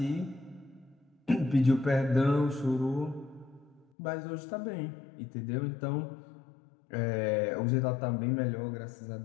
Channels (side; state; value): right; drops out; at 3.9 s